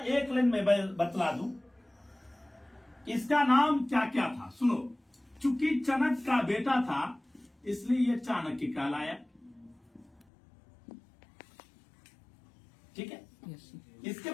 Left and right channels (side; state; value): right; drops out; at 10.2 s